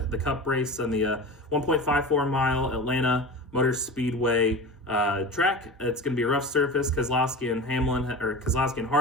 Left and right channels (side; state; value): both; normal; correlation 0.31